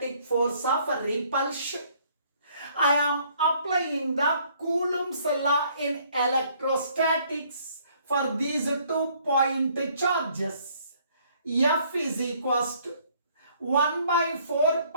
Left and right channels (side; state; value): both; inverted; correlation -0.63